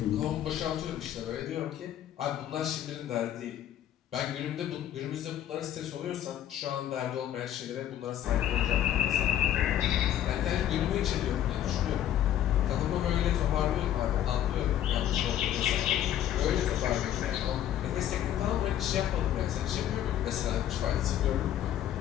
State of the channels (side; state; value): right; quieter; 11.3 dB